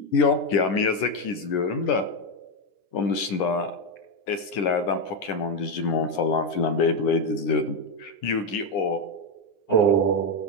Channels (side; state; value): right; late; 9.9 ms